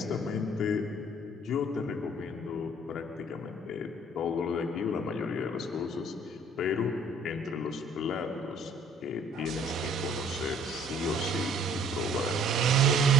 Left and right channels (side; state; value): both; normal; correlation 0.56